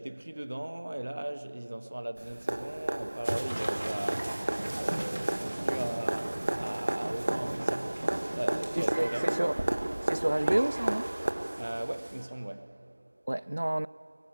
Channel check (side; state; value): both; inverted; correlation -1.00